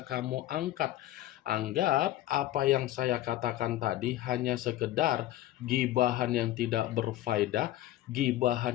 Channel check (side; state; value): right; quieter; 14.5 dB